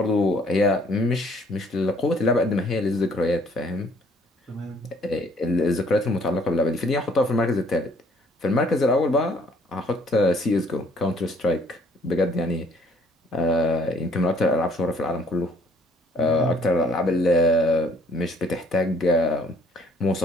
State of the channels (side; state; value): both; normal; correlation 0.62